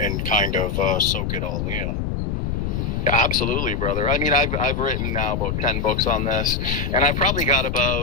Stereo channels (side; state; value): left; noise; rumble, 1 dB below the sound